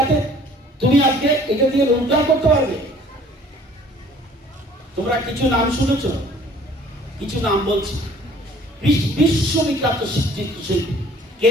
তুমি আজকে এটা দিয়ে রোজগার করতে পারবে। তোমরা কিছু নাম শুনেছ, কিছু নাম বলছি। বিশ্ববিখ্যাত চিত্রশিল্পী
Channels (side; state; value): both; normal; correlation 0.53